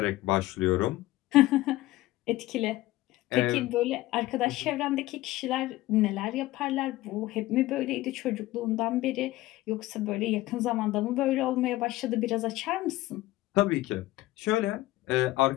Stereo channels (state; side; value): quieter; right; 17.3 dB